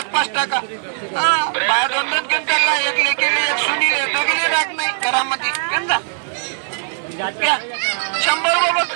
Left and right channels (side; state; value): left; silent; digital silence